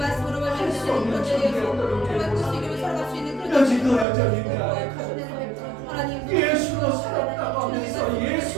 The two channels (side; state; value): left; drops out; at 4.0 s